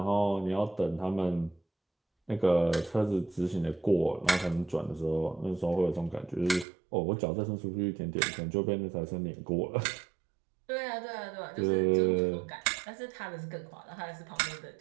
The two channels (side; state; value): left; drops out; at 6.7 s